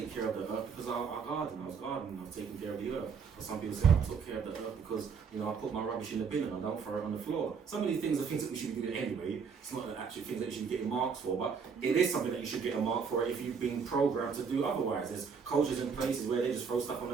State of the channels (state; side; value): quieter; left; 5.9 dB